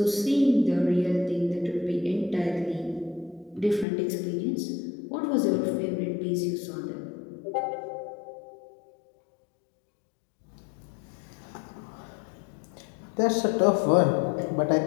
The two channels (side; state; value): right; drops out; at 3.9 s